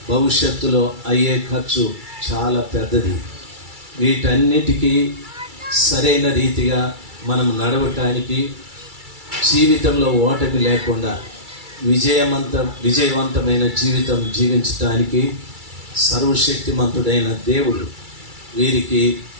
భవిష్యత్తులో అయ్యే ఖర్చు చాలా పెద్దది. వీటన్నిటికీ సరైన రీతిగా మనం నడవటానికి, జీవితంలో ఓటమి లేకుండా విజయవంతమైన జీవితం జీవించడానికి సర్వశక్తిమంతుడైన దేవుడు వీరికి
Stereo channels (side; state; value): left; late; 2.3 ms